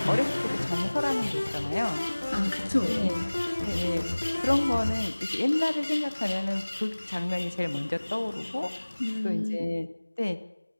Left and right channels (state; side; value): inverted; both; correlation -1.00